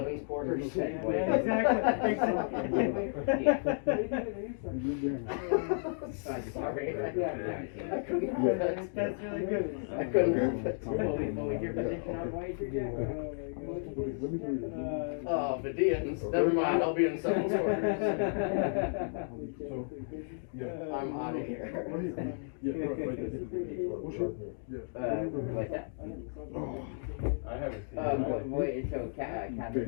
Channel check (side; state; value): right; silent; digital silence